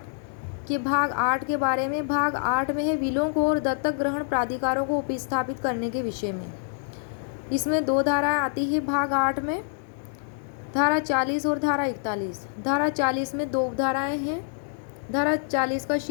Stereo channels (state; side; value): silent; right; 61 dB below the other